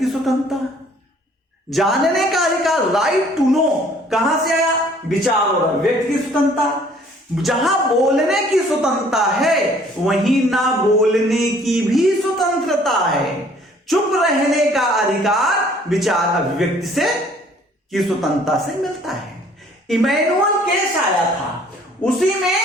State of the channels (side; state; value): both; normal; correlation 0.57